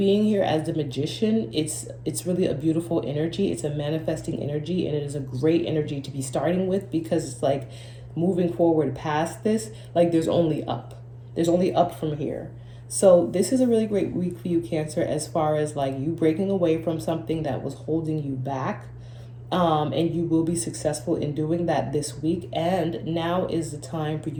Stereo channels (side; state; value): both; identical; correlation 1.00